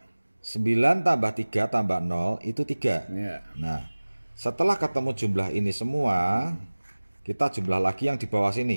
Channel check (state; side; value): inverted; both; correlation -1.00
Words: 9 tambah 3 tambah 0 itu 3. Ya. Nah, setelah ketemu jumlah ini semua, kita jumlah lagi yang di bawah